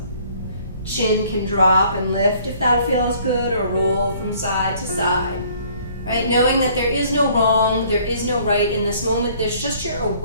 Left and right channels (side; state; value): both; inverted; correlation -0.58